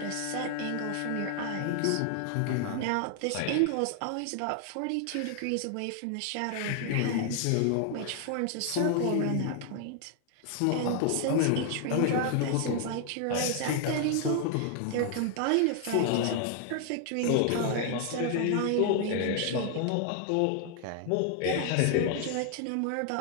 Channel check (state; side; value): different; both; correlation 0.00